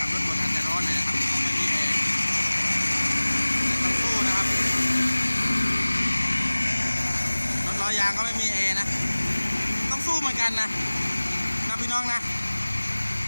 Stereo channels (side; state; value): both; inverted; correlation -1.00